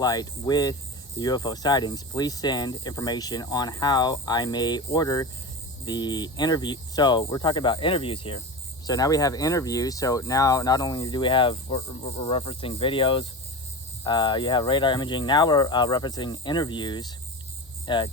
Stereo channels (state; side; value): normal; both; correlation 0.27